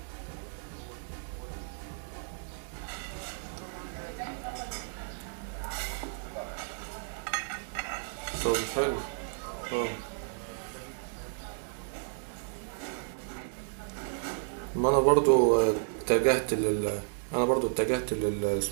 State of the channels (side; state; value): left; silent; digital silence